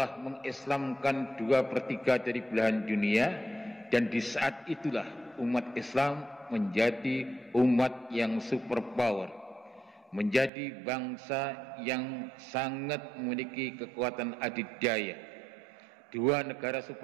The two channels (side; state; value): left; drops out; at 10.5 s